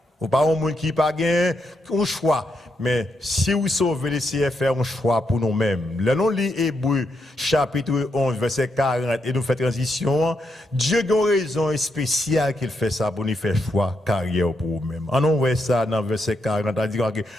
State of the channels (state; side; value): normal; both; correlation 0.81